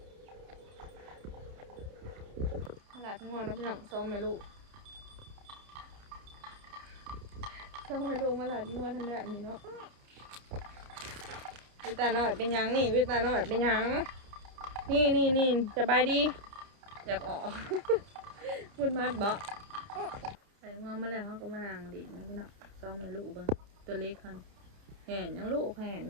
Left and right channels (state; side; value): late; left; 30 ms